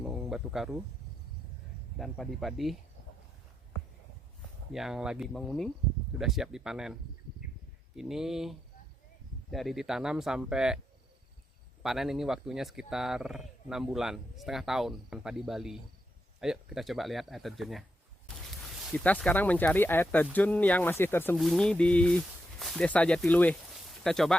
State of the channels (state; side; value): normal; both; correlation 0.84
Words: Batu Karu dan padi-padi yang lagi menguning sudah siap dipanen. Ini dari ditanam sampai panen ini waktunya sekitar 6 bulan, setengah tahun padi Bali. Ayo kita coba lihat air terjunnya. Kita sekarang mencari air terjun yang masih tersembunyi di Desa Jatiluwe. Kita